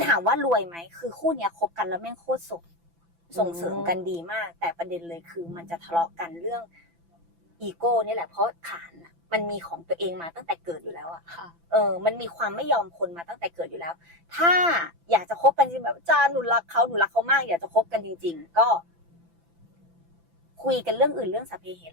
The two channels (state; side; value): late; left; 5.9 ms